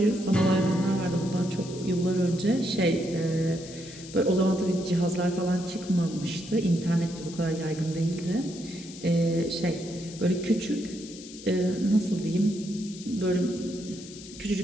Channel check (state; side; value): noise; left; hiss, 16 dB below the sound